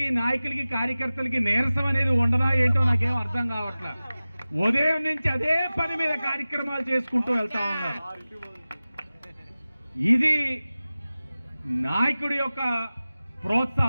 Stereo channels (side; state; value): both; inverted; correlation -0.97